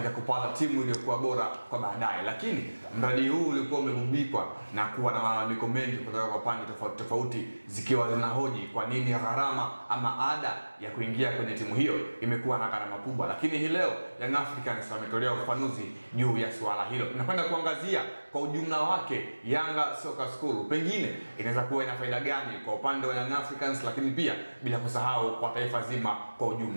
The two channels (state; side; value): inverted; both; correlation -1.00